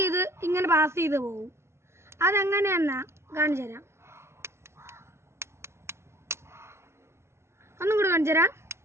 ഇങ്ങനെ പാസ് ചെയ്ത് പോകും. അതെങ്ങനെയെന്നാ കാണിച്ചു തരാം. ഒന്നും കൂടെ കാണിച്ചു തരാം.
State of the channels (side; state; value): left; late; 0.13 ms